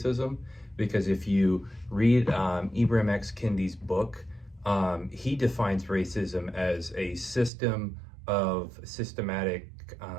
Because if you read Ibram X. Kendi's book, he defines racism as a system of systematic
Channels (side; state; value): left; drops out; at 7.5 s